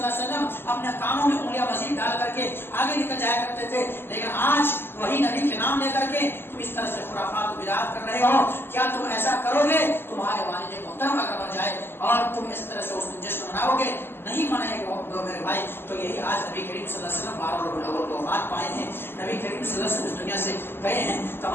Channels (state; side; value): late; right; 0.11 ms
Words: علیہ وسلم اپنے کانوں میں انگلیاں مزید ڈال کر کے آگے نکل جایا کرتے تھے. لیکن آج وہی نبی کے نام لے کر کے تم اس طرح سے خرافات و بدعات کر رہے ہو. کیا تم ایسا کرو گے؟ تمہارے والد محترم اگر مر جائے اور تم اس طرح سے اس دن جشن مناؤ گے، نہیں منائے گے میرے بھائی. تو یہی آج نبی کریم صلی اللہ علیہ وسلم 12 ربیع الاول کو وفات پائے ہیں. نبی کریم صلی اللہ علیہ وسلم اس دنیا سے گئے ہیں.